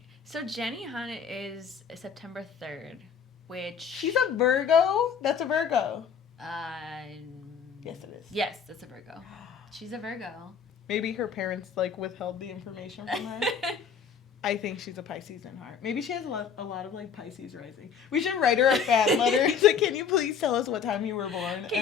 So Jenny Han is September 3rd, which she's a Virgo? That's a Virgo. Yes, it is. Yes, that's a Virgo. She's a Virgo. Maybe her parents like withheld the information from her. I think she's a Pisces in heart. Maybe she has a lot of like Pisces rising. We should write her a fan letter. It's like, can you please tell us what time you were born?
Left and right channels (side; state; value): right; quieter; 6.7 dB